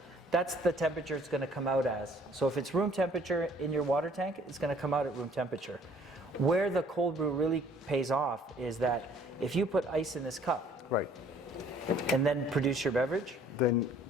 that's the temperature it's going to come out as. So if it's room temperature in your water tank, it's going to come out at room temperature. Where the cold brew really pays off is that if you put ice in this cup, Right. and then produce your beverage, Then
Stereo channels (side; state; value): both; normal; correlation 0.58